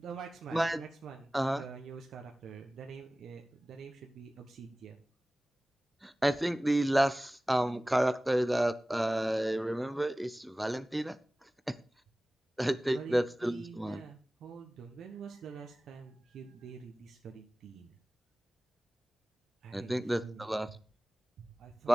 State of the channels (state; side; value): normal; both; correlation 0.98